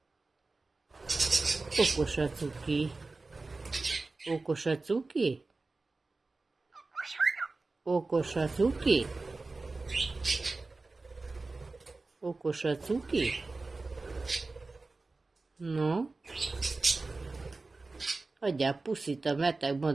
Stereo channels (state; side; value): quieter; left; 3.6 dB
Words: Okos a cuki. Okos a cuki? Okos a cuki? Okos a cuki? No? Adjál puszit a beteg